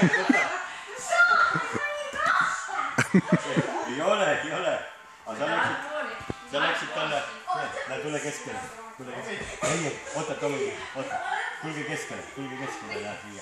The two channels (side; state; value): both; identical; correlation 1.00